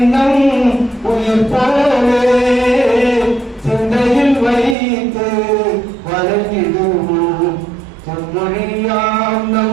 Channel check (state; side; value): drops out; left; at 4.8 s